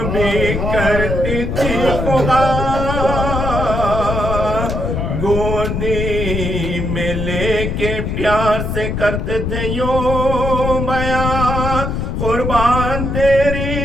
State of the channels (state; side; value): noise; left; rumble, 2 dB below the sound